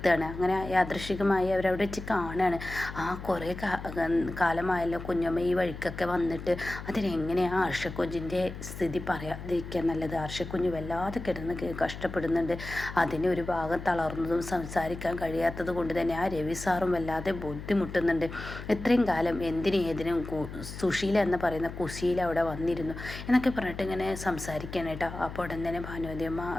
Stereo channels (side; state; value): left; noise; hum, 10 dB below the sound